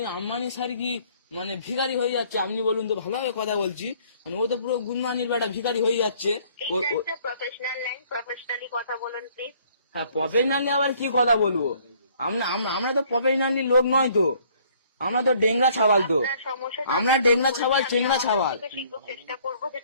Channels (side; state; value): both; inverted; correlation -0.60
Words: আম্বানি স্যার কি মানে ভিখারি হয়ে যাচ্ছে? আপনি বলুন তো, ভালোভাবে কথা বলছি, মানে ও তো পুরো গুনমানির বেটা ভিখারি হয়ে যাচ্ছে। এটা একটা প্রফেশনাল লাইন, প্রফেশনালি কথা বলুন প্লিজ। হ্যাঁ, প্রফেশনালি আবার কি কথা বলবো? আমরা তো প্রফেশনালি লোক নয় তো, আমরা তো ডেংরা ছাবাল তো, আমরা ডেংরা ছাবাল, চেংরা ছাবাল। শীঘ্র চেষ্টা করবো